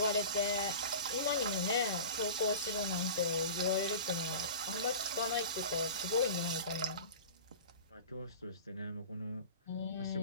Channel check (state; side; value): inverted; both; correlation -0.36